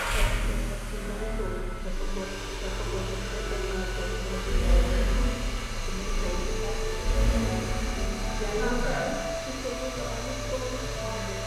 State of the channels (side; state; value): both; identical; correlation 1.00